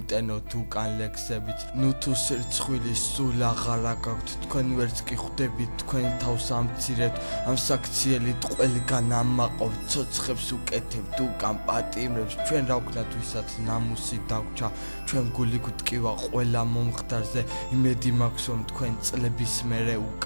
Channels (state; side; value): inverted; both; correlation -1.00